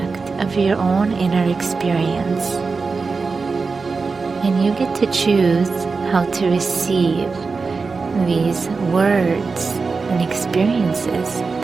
of your own inner experience, and you get to choose how to receive these words and experiences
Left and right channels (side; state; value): left; quieter; 4.5 dB